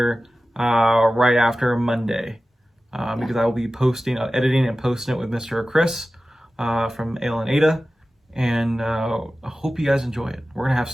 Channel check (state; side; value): normal; both; correlation 0.95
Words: right after Monday. Because I will be editing and posting it with Mr. Chris from Ale and Ada. And I hope you guys enjoy it. We're going to have